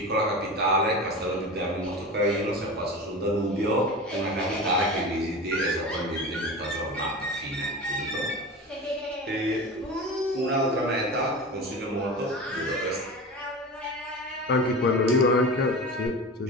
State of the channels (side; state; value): both; normal; correlation 0.30